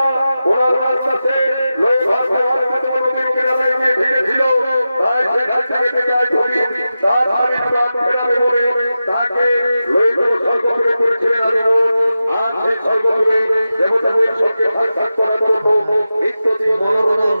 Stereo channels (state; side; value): inverted; both; correlation -0.92